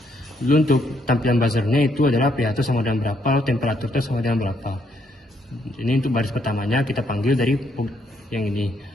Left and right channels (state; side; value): normal; both; correlation 0.73